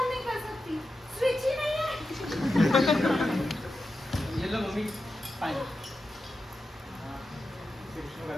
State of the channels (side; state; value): both; normal; correlation 0.90